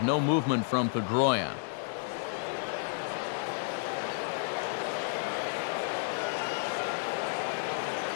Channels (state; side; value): silent; right; 57 dB below the other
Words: no movement from Pedroia.